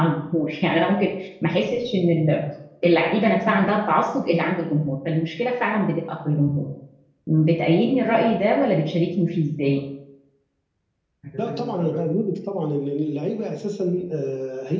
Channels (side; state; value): both; identical; correlation 1.00